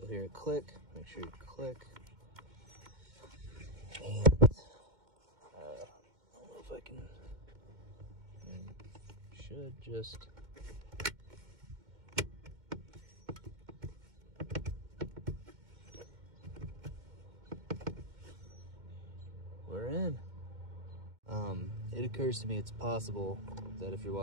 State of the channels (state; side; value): late; left; 2.1 ms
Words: hear it click, make sure you click. And I don't know if I can, should just, we're in. It occurs to me it's possible that if you're